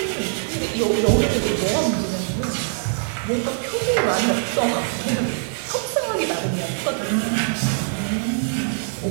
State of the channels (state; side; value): silent; left; digital silence